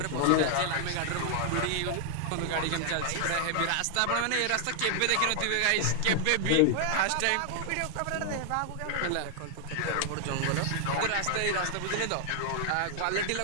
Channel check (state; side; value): different; both; correlation 0.00